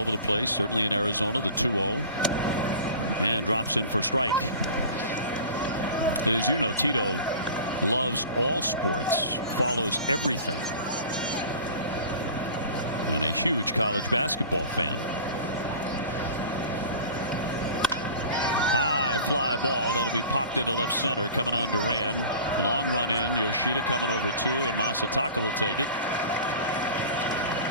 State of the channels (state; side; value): inverted; both; correlation -0.39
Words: the place. Certainly in Arizona, the 2-0. And drops in for strike. And as you know, Tito loves all sports, follows everything, and a huge college basketball fan. High fly ball that'll be popped into left center, coming on Duran. Long run in. Yoshida coming over 2, and Masataka will take it